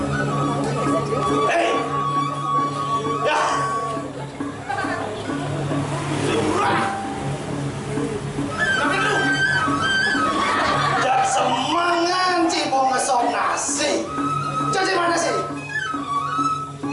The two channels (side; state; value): both; identical; correlation 1.00